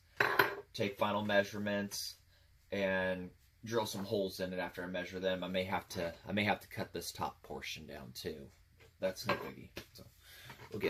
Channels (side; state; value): both; identical; correlation 1.00